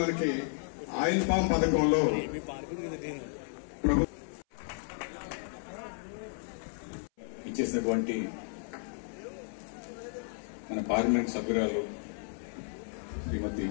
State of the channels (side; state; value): right; silent; 56 dB below the other